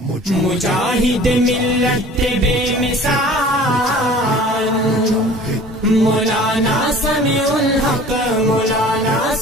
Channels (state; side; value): normal; both; correlation 0.46